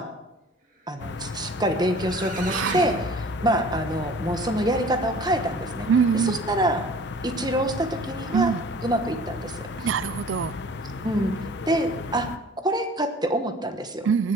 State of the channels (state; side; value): normal; both; correlation 0.47